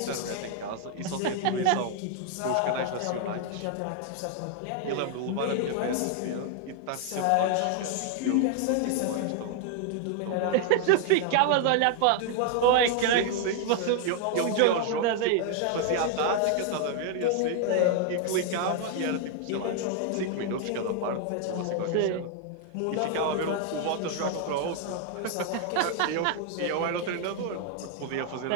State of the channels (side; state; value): both; different; correlation 0.00